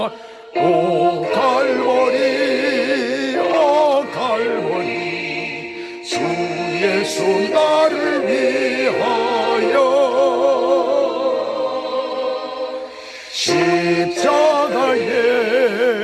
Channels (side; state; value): both; identical; correlation 1.00